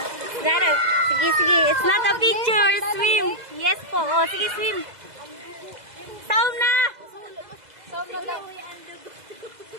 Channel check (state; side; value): late; left; 2.0 ms